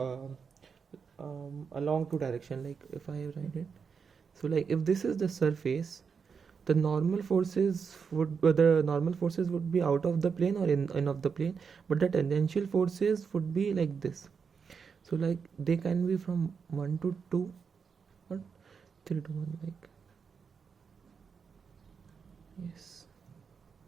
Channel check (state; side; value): quieter; left; 6.0 dB